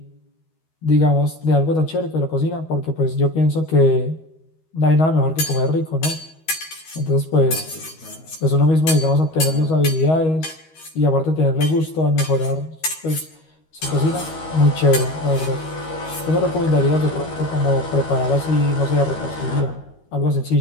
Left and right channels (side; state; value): right; late; 13 ms